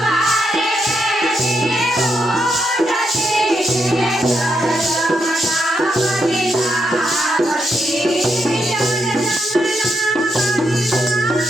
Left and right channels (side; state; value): both; normal; correlation 0.81